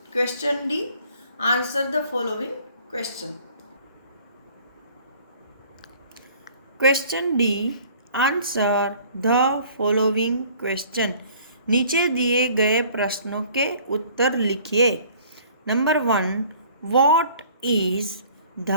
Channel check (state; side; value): inverted; both; correlation -0.53